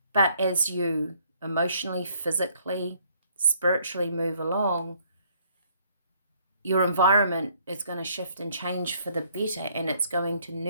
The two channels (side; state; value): both; inverted; correlation -0.64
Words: But as you emotionally, physically, spiritually move along, your environment is going to shift and change for the better, and it's going to